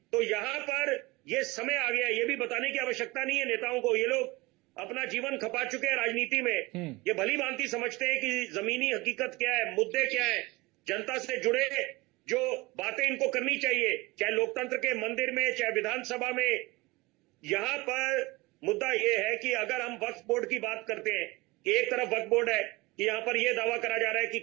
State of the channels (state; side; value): quieter; left; 22.7 dB